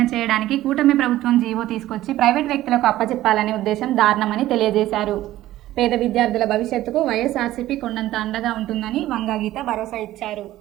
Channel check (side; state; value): left; quieter; 14.8 dB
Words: చేయడానికి కూటమి ప్రభుత్వం జీవో తీసుకొచ్చి ప్రైవేట్ వ్యక్తులకు అప్పచెప్పాలనే ఉద్దేశం దారుణమని తెలియజేశారు. పేద విద్యార్థుల భవిష్యత్తుకు వైఎస్ఆర్సీపీ కొండంత అండగా ఉంటుందని వంగా గీత భరోసా ఇచ్చారు.